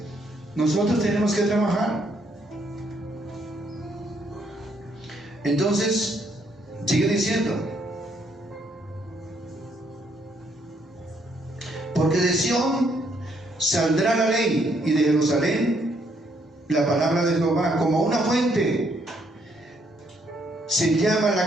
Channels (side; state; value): both; normal; correlation 0.71